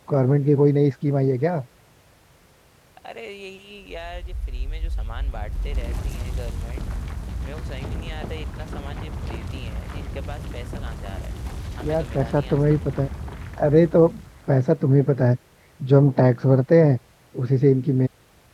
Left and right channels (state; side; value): identical; both; correlation 1.00